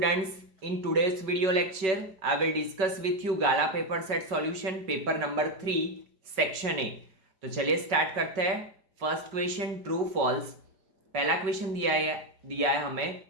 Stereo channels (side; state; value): left; late; 5.3 ms